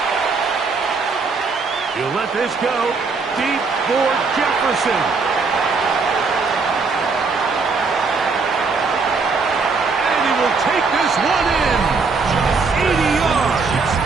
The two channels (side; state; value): left; quieter; 4.5 dB